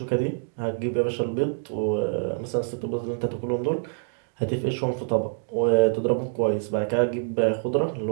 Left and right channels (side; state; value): left; silent; digital silence